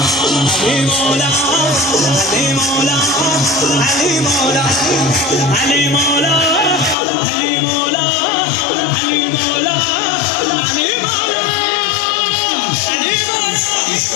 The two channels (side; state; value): right; drops out; at 7.0 s